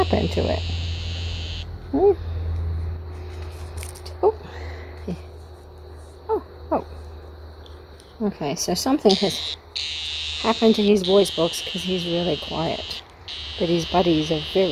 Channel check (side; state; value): both; identical; correlation 1.00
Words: to it? Oh. Yeah. Oh. Okay, so something has happened to his voice box because he's really quiet. But his buddies are